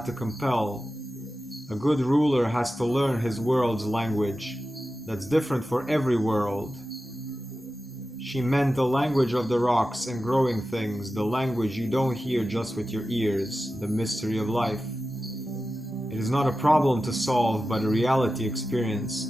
to compel. A good ruler has to learn his world's language. That's different for every world. She meant the language of the rocks and growing things, the language you don't hear just with your ears, the mystery of life. It is not a problem to solve, but a reality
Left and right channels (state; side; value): normal; both; correlation 0.93